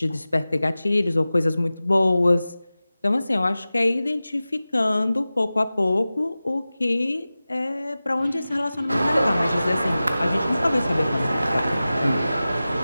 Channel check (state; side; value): inverted; both; correlation -0.96